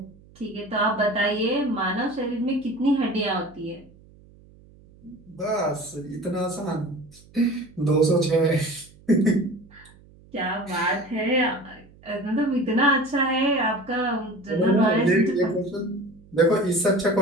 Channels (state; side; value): noise; right; hum, 25 dB below the sound